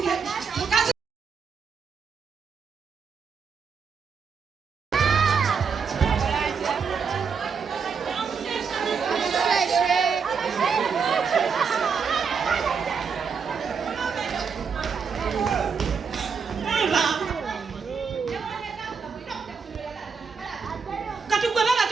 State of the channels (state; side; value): quieter; left; 5.9 dB